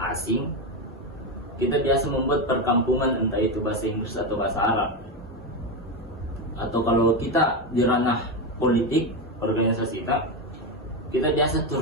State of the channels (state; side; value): normal; both; correlation 0.12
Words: asing, kita biasa membuat perkampungan, entah itu bahasa Inggris atau bahasa Arab. Atau kalau kita di ranah politik, organisasi kita biasa